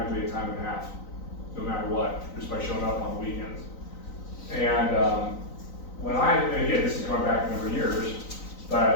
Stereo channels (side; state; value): right; late; 3.9 ms